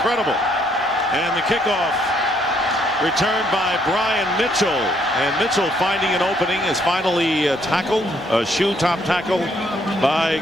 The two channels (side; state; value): both; normal; correlation 0.69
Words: And the kickoff returned by Brian Mitchell, and Mitchell, finding an opening, is finally tackled, a shoe top tackle by